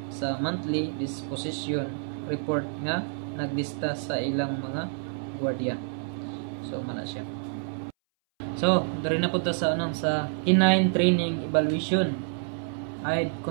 sa monthly disposition report nga naglista sa ilang mga gwardiya. So mana siya. So dari na punta sa sa canine training evaluation,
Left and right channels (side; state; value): left; silent; 59 dB below the other